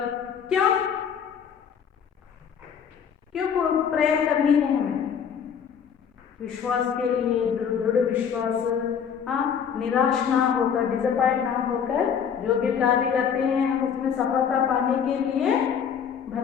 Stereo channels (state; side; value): quieter; right; 7.5 dB